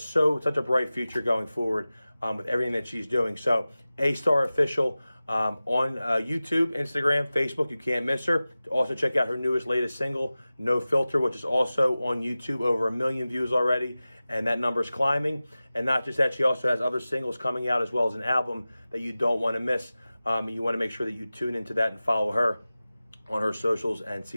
such a bright future going forward with everything that she's doing. So A-Star Official on YouTube, Instagram, Facebook, you can't miss her. Also check out her latest single, No Filter, which is also on YouTube, over 1 million views already, and that number is climbing. And not just that, she also has other singles coming out as well as an album that you don't want to miss. You want to make sure that you tune into that and follow her on her socials and see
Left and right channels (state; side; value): inverted; both; correlation -0.96